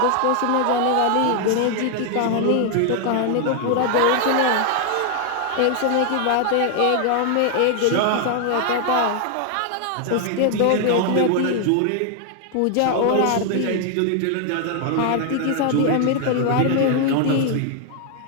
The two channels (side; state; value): both; different; correlation 0.00